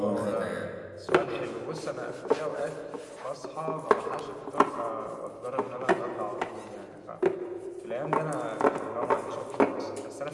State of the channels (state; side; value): identical; both; correlation 1.00